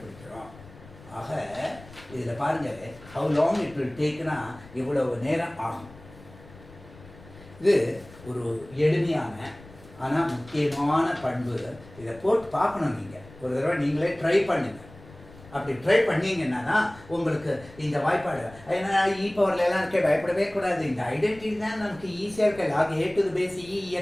ஆக இதில் பாருங்கள் ஹவு லாங் இட் வில் டேக்னா இவ்வளவு நேரம் ஆகும். இது ஒரு எளிமையான ஆனால் முக்கியமான பண்பு. இதை போட்டு பார்க்கணும். நீங்கள் ஒரு தடவை நீங்களே ட்ரை பண்ணுங்கள். அப்படி ட்ரை பண்ணிங்கன்னா உங்களுக்கு இந்த வாய்ப்பாடு ஏன்னா பவர்லாம் இருக்க பயப்படவே கூடாது. இந்த ஐடென்டிட்டி தான் நமக்கு ஈஸியாக இருக்க. லாக் ஏ டு பேஸ்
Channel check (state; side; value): noise; left; rumble, 21 dB below the sound